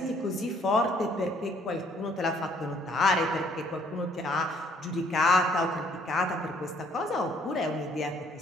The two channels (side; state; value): both; normal; correlation 0.62